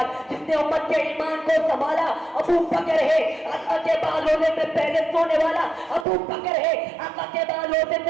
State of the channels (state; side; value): drops out; left; at 6.1 s